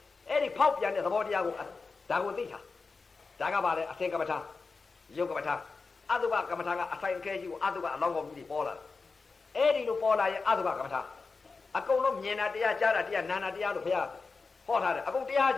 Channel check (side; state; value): right; quieter; 4.3 dB